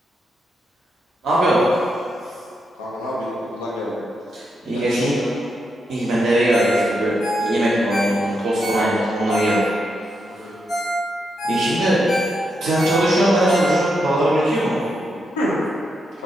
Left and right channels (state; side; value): normal; both; correlation 0.83